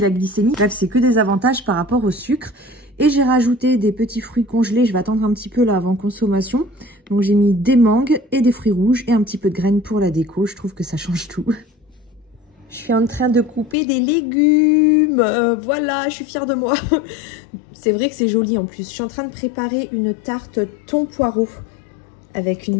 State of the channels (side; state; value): right; drops out; at 13.8 s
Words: glycémie. Bref, c'est que des avantages par rapport au sucre. Et j'ai rajouté des petits fruits congelés, je vais attendre un petit peu là avant consommation. Donc j'ai mis des mangues et des fruits rouges et un petit peu de graines pour la déco, je trouve que ça change tout. Je suis en train de couper des légumes, voilà, je suis fière de moi. C'est vrai que c'est joli en plus. Je suis en train de préparer une tarte thon poireau avec